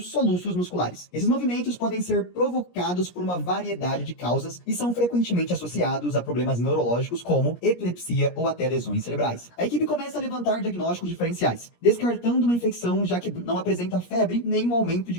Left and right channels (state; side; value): late; right; 17 ms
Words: musculares. Esses movimentos podem ser provocados por uma variedade de causas e são frequentemente associados a problemas neurológicos como epilepsia ou até lesões cerebrais. A equipe começa a levantar diagnósticos diferenciais, descartando uma infecção já que não apresenta febre nem um aumento